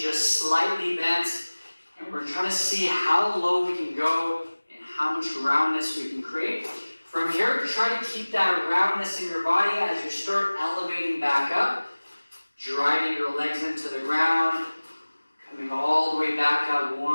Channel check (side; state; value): both; inverted; correlation -1.00